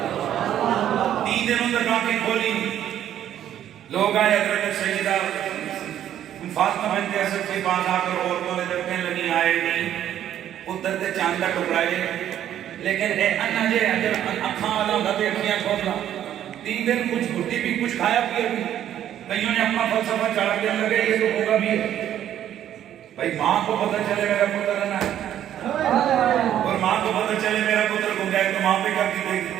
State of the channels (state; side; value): quieter; left; 11.0 dB